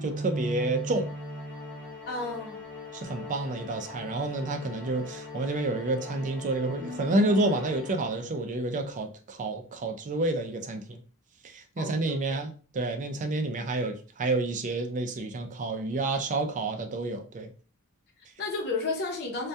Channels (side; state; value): both; normal; correlation 0.31